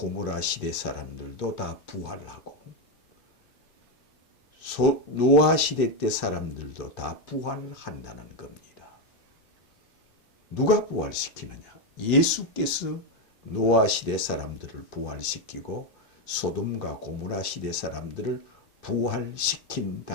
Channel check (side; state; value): both; normal; correlation 0.07